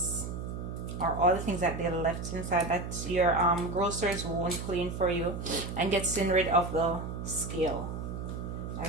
or all the things that they left inside that your grocers won't clean for you, and getting rid of the scale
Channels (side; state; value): right; noise; hum, 6 dB below the sound